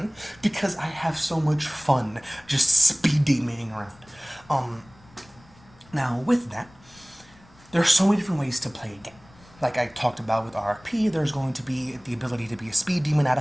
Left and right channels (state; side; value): noise; left; rumble, 26 dB below the sound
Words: because I have so much fun just speed demanding around. Now with that, there are so many different ways to play a game. Like I talked about with RFP, there's going to be the ability to be a speed demon out